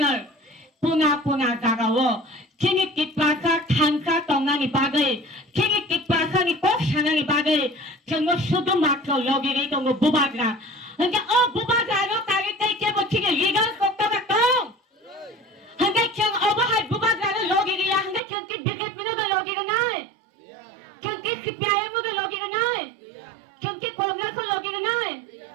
puna garawo. Kini tipaka kanka tonga ni bagay. Kini tipaka ni kok shanga ni bagay. Kino sudo makro logi rito ngo bubagra. Hanggang bubagra no kagit kay kebo kini legal kokta bakong. Hanggang kiyang obahay bubagra no logi riya. Hanggang kiyang bigat mo na logi na nai. Kiyang kipiyaya mo na logi na nai. Kiyang kongres mo logi na nai.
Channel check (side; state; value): left; drops out; at 18.2 s